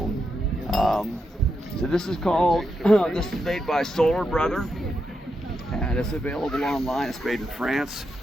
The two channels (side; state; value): both; normal; correlation 0.84